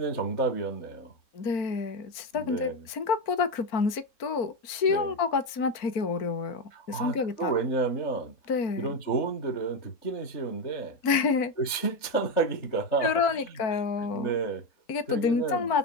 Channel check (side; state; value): right; late; 4.4 ms